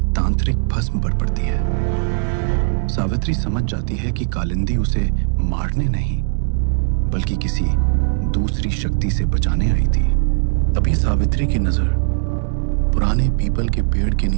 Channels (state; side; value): silent; left; digital silence